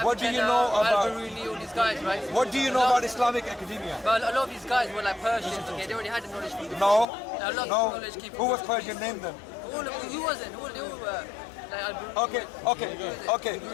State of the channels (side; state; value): right; drops out; at 7.1 s